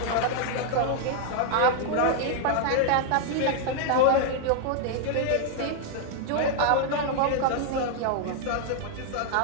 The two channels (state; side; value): different; both; correlation 0.00